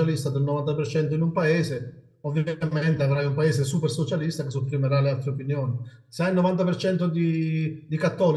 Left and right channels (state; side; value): identical; both; correlation 1.00